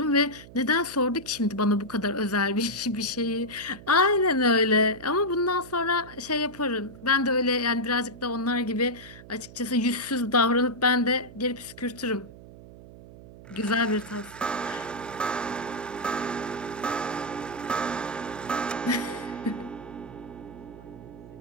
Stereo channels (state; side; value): noise; right; hum, 18 dB below the sound